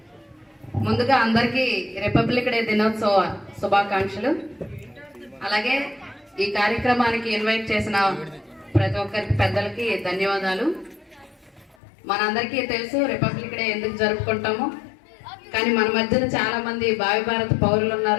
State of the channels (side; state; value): right; drops out; at 11.8 s